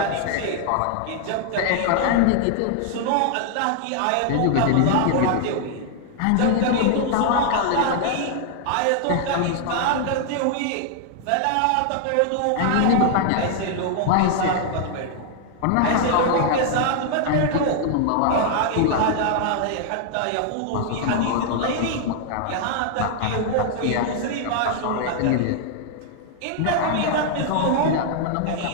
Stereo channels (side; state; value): both; different; correlation 0.00